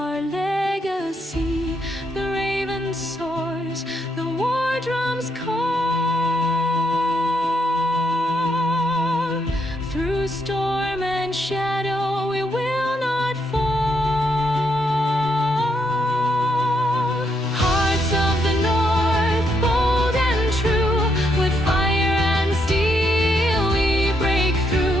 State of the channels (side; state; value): both; normal; correlation 0.77